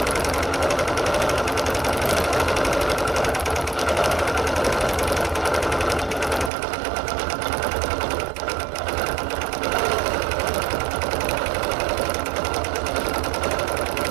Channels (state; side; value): drops out; left; at 6.5 s